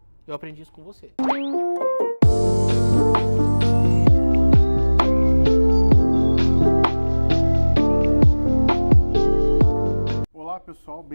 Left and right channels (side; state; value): both; inverted; correlation -1.00